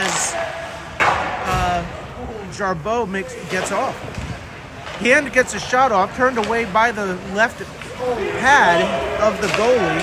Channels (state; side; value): identical; both; correlation 1.00